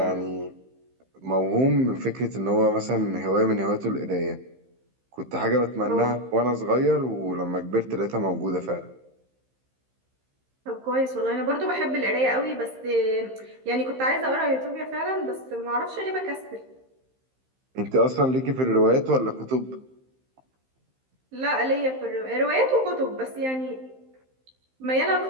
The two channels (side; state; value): left; late; 15 ms